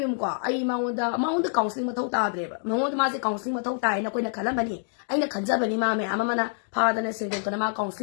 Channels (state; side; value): silent; right; digital silence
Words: ိုက်မြုံကွာအဲ့မောင်တကောင်စလင်းမထုတ်တာတဲ့မောင်တမစီကောင်စလင်းမထုတ်တာရင်ကိုယ်နဲ့ခလမနီအဲ့နဲ့ခန်ကြပနီမမဲအမမနာဖာတဲ့စင်တဲ့ကနမကောင်စလ